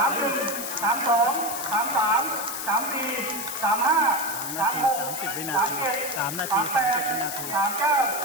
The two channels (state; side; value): noise; left; hiss, 6 dB below the sound